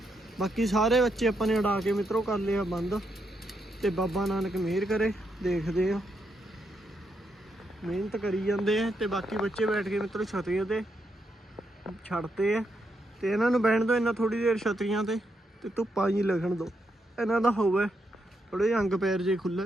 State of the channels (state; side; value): normal; both; correlation 0.80